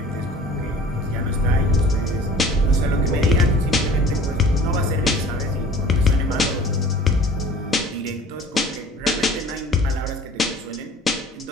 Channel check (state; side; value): normal; both; correlation 0.46